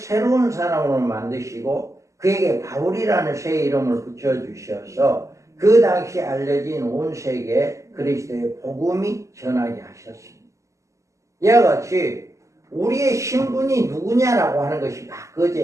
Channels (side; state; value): left; late; 0.15 ms